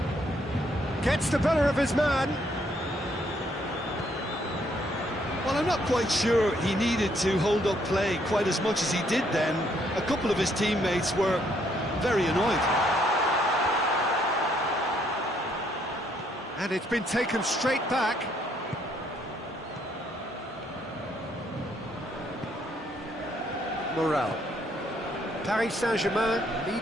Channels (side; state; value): both; normal; correlation 0.70